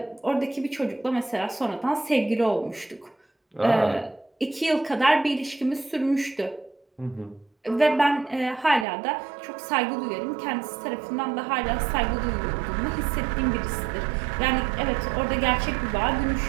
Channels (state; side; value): drops out; left; at 8.8 s